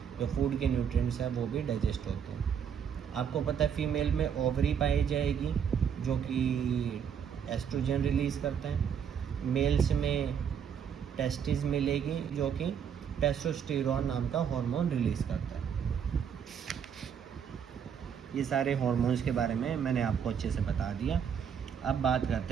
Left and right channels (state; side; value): quieter; left; 7.7 dB